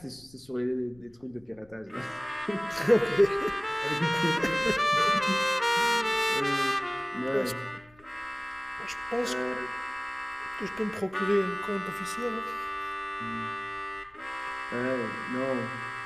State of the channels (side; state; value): left; noise; rumble, 28 dB below the sound